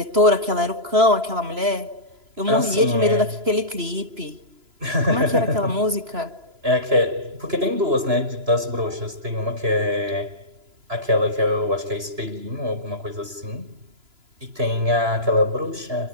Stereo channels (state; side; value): late; left; 2.9 ms